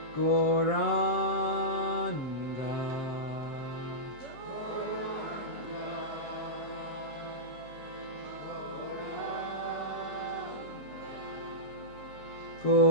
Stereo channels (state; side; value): late; right; 7.6 ms